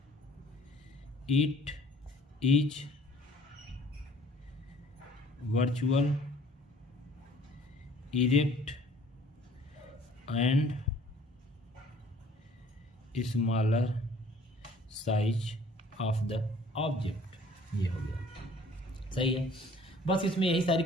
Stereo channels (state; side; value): normal; both; correlation 0.54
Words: It is virtual, erect and smaller size of the object। ये हो गया, सही है। बस इसमें यही सारी